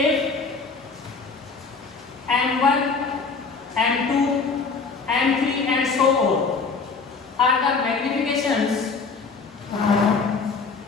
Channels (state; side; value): quieter; right; 4.7 dB